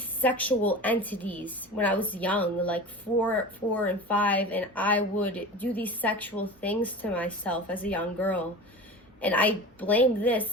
entities when I was young, like 4 and 5, and I would do these sexual things to myself as a young girl. And I blame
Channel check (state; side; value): normal; both; correlation 0.33